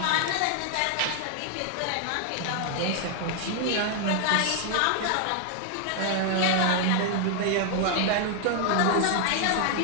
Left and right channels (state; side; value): different; both; correlation 0.00